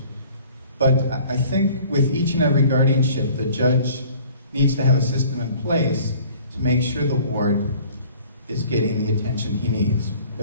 But I think with each and every guardianship, the judge needs to have a system in place to make sure the ward is getting the attention he needs.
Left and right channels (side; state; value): both; inverted; correlation -0.51